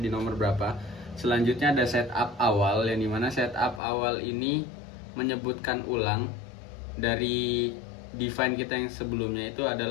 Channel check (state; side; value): drops out; right; at 3.8 s